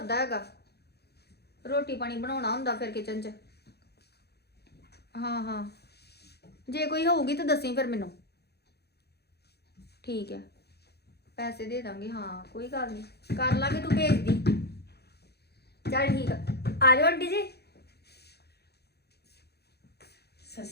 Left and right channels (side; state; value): right; late; 0.48 ms